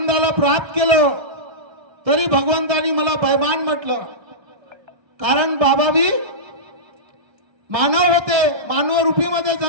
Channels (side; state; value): left; late; 1.3 ms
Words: प्राप्त केलो, तरी भगवंतानी मला बेईमान म्हटलं। कारण बाबा भी मानव होते, मानव रूपीमध्ये